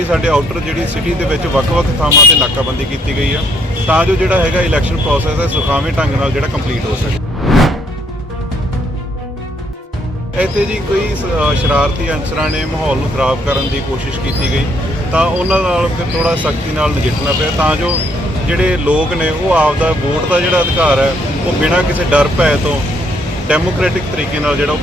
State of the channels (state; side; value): normal; both; correlation 0.68